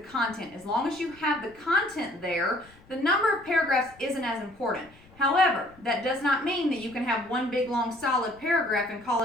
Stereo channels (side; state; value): left; noise; rumble, 27 dB below the sound